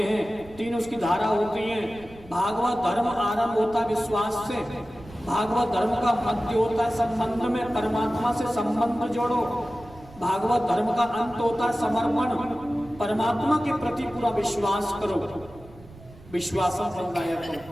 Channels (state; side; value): noise; right; rumble, 21 dB below the sound